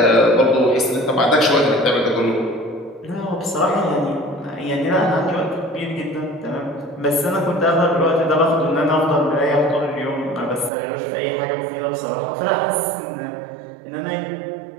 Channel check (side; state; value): left; drops out; at 10.7 s